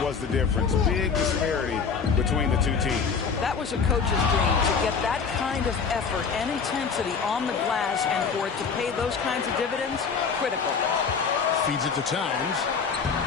was the difference. Big disparity between the two teams. That was a coach's dream, to get that kind of effort and intensity on the glass, and for it to pay those kinds of dividends, critical. Feeds it to Towns.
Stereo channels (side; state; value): right; quieter; 5.8 dB